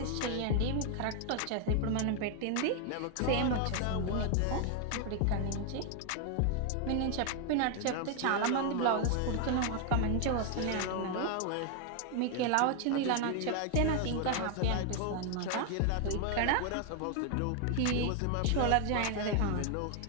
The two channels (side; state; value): both; different; correlation 0.01